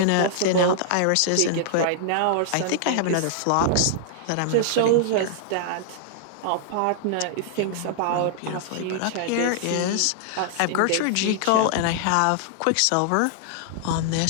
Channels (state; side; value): different; both; correlation -0.01